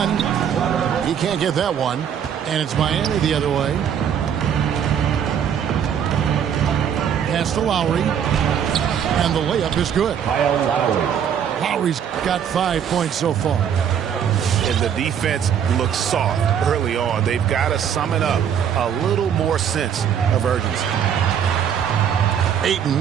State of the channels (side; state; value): left; quieter; 8.5 dB